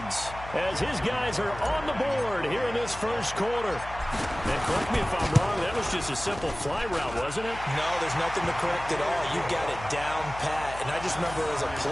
as his guys are on the board here in this first quarter. And correct me if I'm wrong, that was just a simple fly route, wasn't it? No, there's nothing to correct at all. You got it down pat. And I just remember as a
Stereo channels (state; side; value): noise; left; hum, 14 dB below the sound